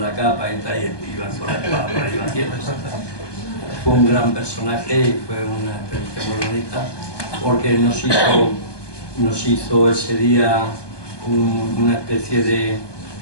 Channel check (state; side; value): late; right; 1.2 ms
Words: capa y tal, y iban con la espada por ahí batiendo. Fue un gran personaje y fue una experiencia muy bonita porque nos hizo ese día una especie